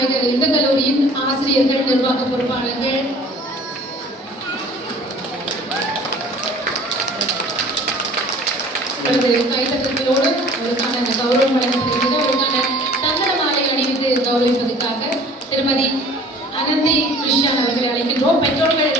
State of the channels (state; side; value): normal; both; correlation 0.49